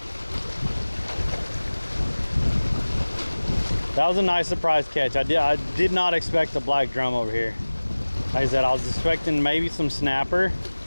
That was a nice surprise catch. I did not expect the black drum over here. Like I said, I was expecting maybe some snapper,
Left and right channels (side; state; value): both; inverted; correlation -1.00